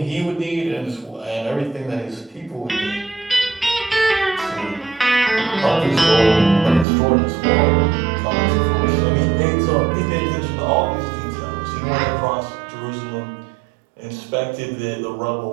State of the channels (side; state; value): left; drops out; at 6.9 s